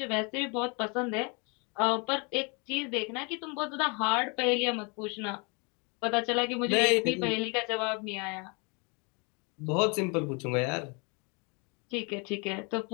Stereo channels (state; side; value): quieter; right; 32.3 dB